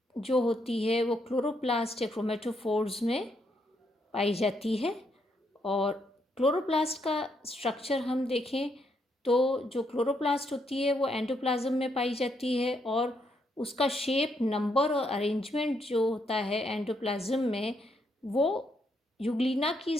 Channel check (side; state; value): both; normal; correlation 0.76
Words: जो होती है वो क्लोरोप्लास्ट या क्रोमेटोफोर्स में पाई जाती है। और क्लोरोप्लास्ट का स्ट्रक्चर हम देखें तो जो क्लोरोप्लास्ट होती है वो एंडोप्लाज्म में पाई जाती है और उसका शेप, नंबर और अरेंजमेंट जो होता है एंडोप्लाज्म में वो यूग्लिना की